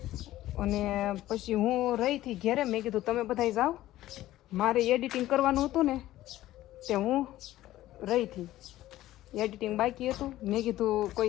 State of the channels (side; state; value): right; quieter; 15.0 dB